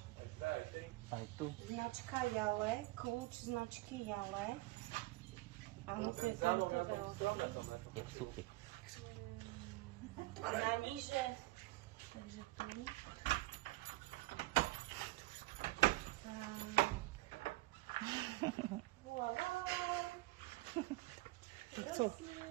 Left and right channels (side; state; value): left; quieter; 20.5 dB